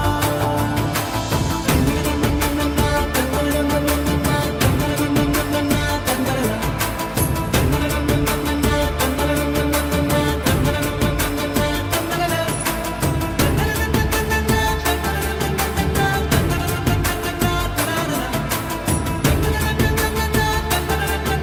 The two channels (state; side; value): identical; both; correlation 1.00